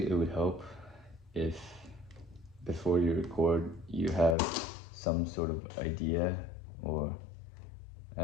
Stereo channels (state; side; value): drops out; right; at 4.4 s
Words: it would help if before you record you have some sort of idea or